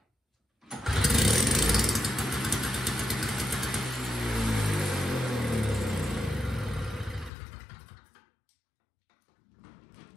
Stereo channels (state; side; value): drops out; right; at 7.3 s